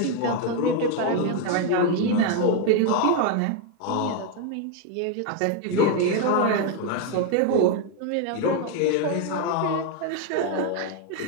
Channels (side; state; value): both; different; correlation 0.01